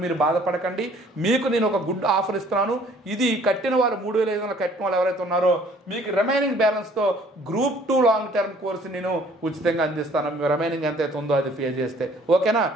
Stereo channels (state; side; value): normal; both; correlation 0.57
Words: మీరు బాధపడకండి. మీకు నేను ఒక గుడ్ ఆఫర్ ఇస్తున్నాను. ఇది కట్టిన వాళ్ళు 3,500 కట్టిన వాళ్ళు ఎవరైతే ఉన్నారో మీకు రిమైనింగ్ బ్యాలెన్స్తో Group 2 లాంగ్ టర్మ్ కోర్సు నేను ఉచితంగా అందిస్తాను. రిమైనింగ్ ఎంత అయితే ఉందో అది పే చేస్తే. ఓకేనా,